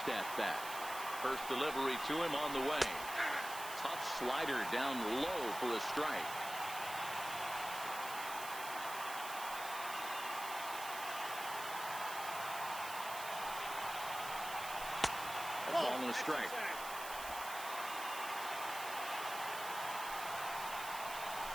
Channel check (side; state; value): right; noise; hiss, 9 dB below the sound